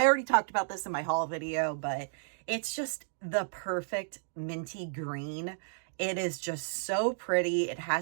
talked about this in my haul video, but It's just the perfect minty green. It is just so pretty. It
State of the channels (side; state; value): left; silent; digital silence